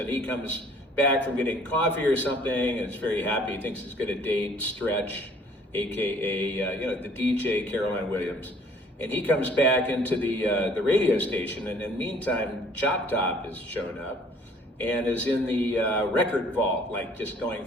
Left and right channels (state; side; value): normal; both; correlation 0.56